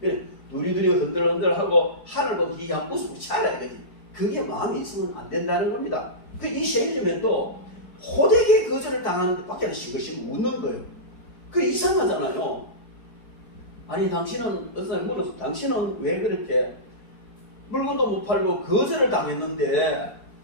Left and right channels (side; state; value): right; late; 4.6 ms